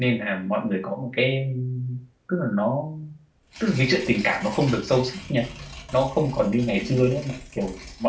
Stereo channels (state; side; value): identical; both; correlation 1.00